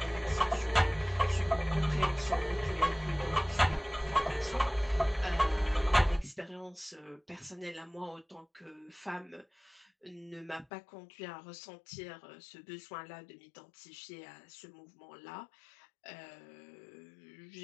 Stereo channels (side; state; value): right; drops out; at 10.7 s